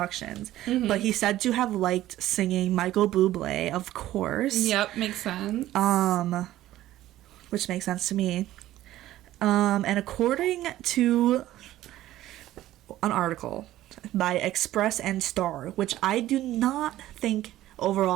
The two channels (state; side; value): quieter; left; 14.5 dB